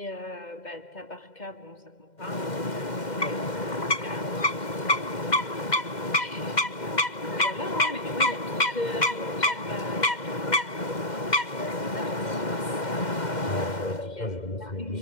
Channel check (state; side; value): late; right; 2.1 ms